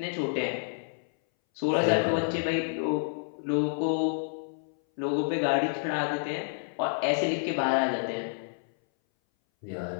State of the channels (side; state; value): right; silent; 58 dB below the other